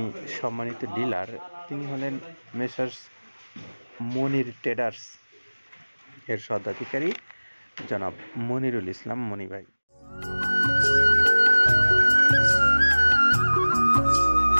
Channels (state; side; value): inverted; both; correlation -1.00